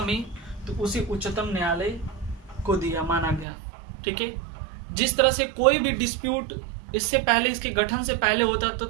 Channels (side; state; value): left; drops out; at 3.5 s